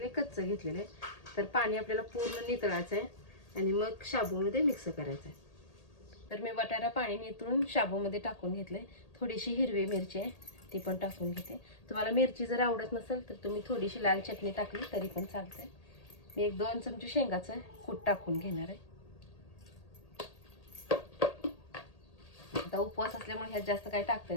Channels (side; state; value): right; late; 1.8 ms